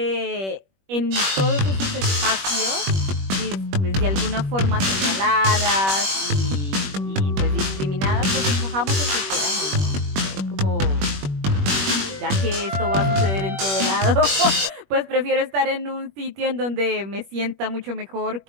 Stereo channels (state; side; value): late; left; 21 ms